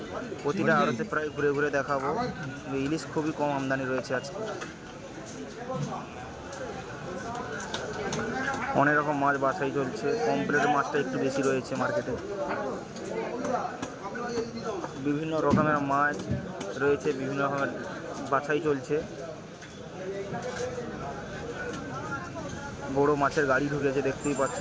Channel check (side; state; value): both; identical; correlation 1.00